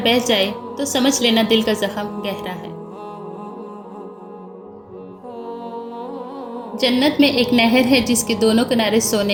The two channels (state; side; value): identical; both; correlation 1.00